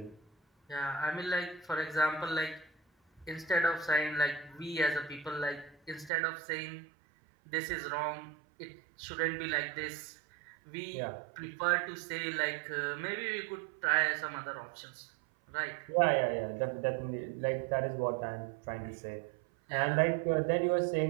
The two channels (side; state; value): left; drops out; at 6.1 s